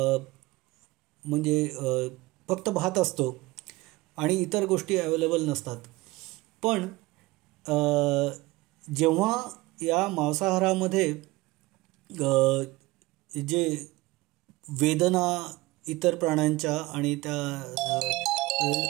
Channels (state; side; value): quieter; left; 20.8 dB